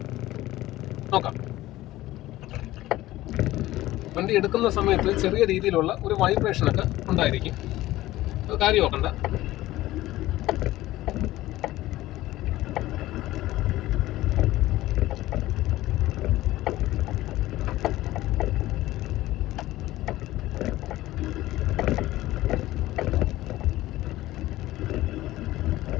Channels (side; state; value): right; quieter; 16.4 dB